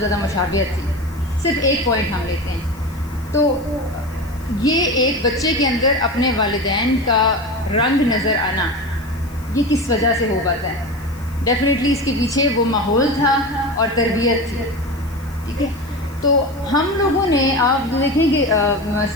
مشابہت تھی. صرف ایک پوائنٹ ہم لیتے ہیں. تو یہ ایک بچے کے اندر اپنے والدین کا رنگ نظر آنا یہ کس وجہ سے ہو پاتا ہے؟ ڈیفینیٹلی اس کے پیچھے وہ ماحول تھا اور تربیت تھی. ٹھیک ہے, تو ہم لوگوں نے آپ دیکھیں کہ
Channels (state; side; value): noise; left; hiss, 24 dB below the sound